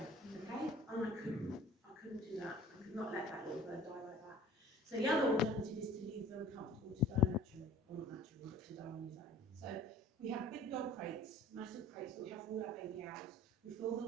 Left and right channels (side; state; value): both; normal; correlation 0.47